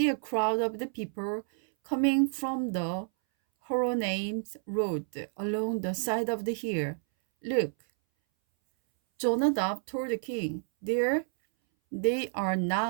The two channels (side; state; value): left; silent; 58 dB below the other